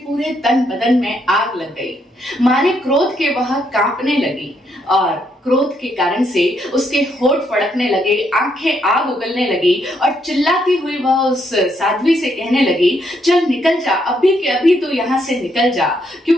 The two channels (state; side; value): normal; both; correlation 0.75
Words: पूरे तन बदन में आग लग गई। मारे क्रोध के वह कांपने लगी और क्रोध के कारण से उसके होंठ फड़कने लगे, आंखें आग उगलने लगी और चिल्लाती हुई वह उस साध्वी से कहने लगी, चल निकल जा, अभी के अभी तू यहाँ से निकल जा,